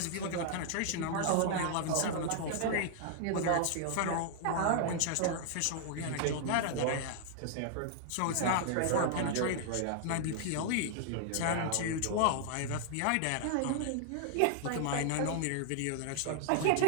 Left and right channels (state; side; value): different; both; correlation -0.01